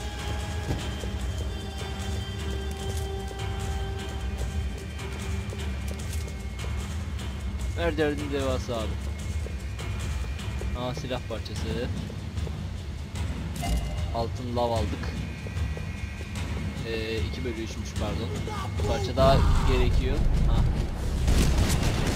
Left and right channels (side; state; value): both; identical; correlation 1.00